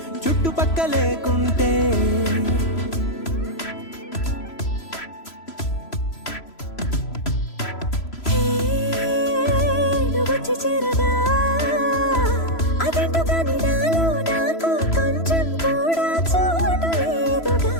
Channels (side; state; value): right; late; 3.0 ms